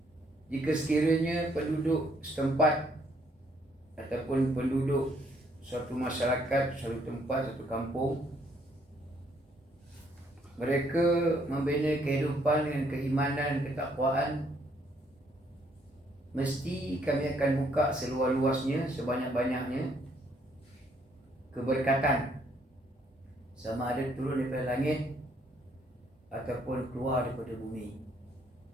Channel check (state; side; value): normal; both; correlation 0.68